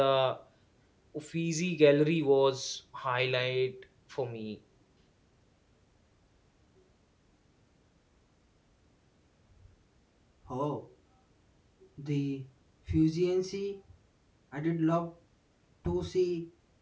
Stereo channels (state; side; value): identical; both; correlation 1.00